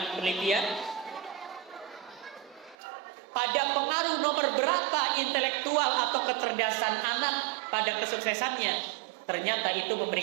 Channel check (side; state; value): left; drops out; at 2.8 s